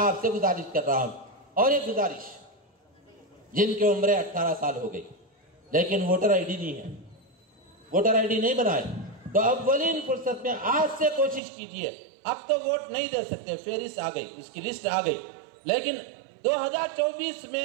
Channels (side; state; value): left; drops out; at 11.4 s